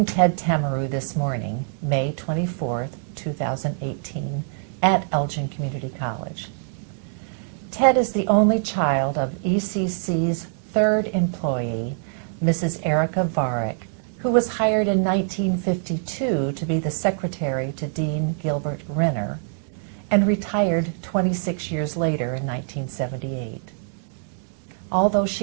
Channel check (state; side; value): silent; left; 62 dB below the other